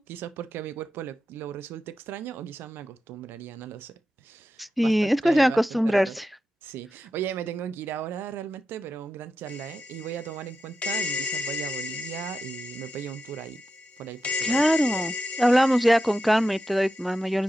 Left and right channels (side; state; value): both; normal; correlation 0.89